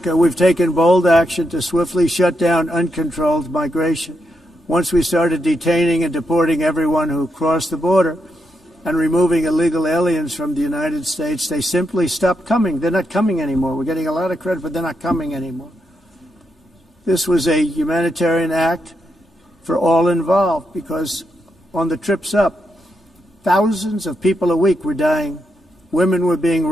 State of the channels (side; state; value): both; normal; correlation 0.83